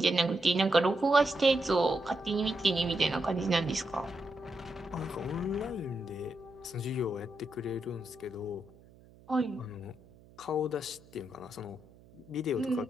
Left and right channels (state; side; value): noise; right; hum, 25 dB below the sound